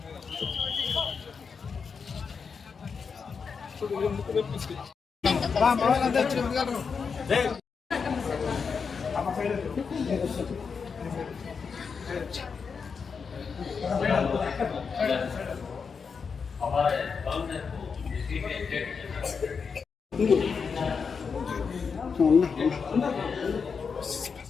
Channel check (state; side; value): quieter; right; 5.7 dB